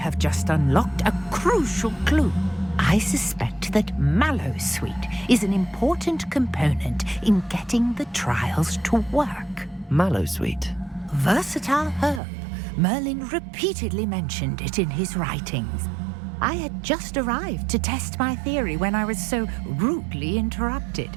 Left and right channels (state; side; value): drops out; left; at 12.2 s